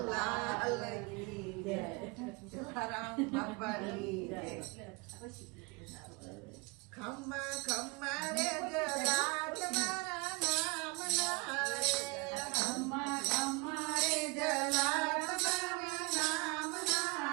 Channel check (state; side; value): quieter; left; 28.3 dB